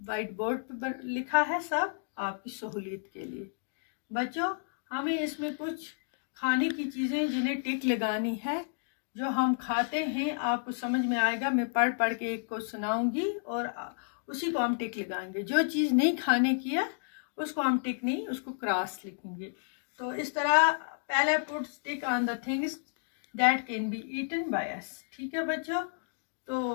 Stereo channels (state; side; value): silent; right; digital silence